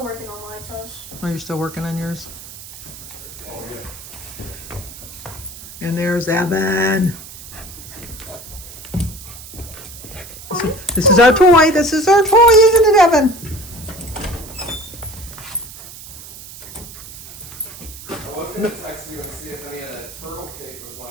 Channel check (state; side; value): noise; right; hiss, 15 dB below the sound